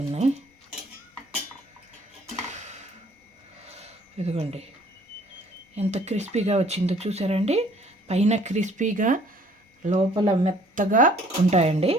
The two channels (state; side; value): normal; both; correlation 0.58